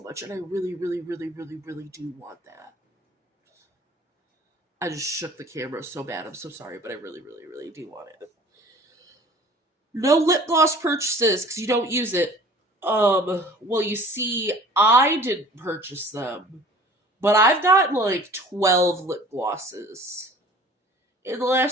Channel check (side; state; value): both; normal; correlation 0.47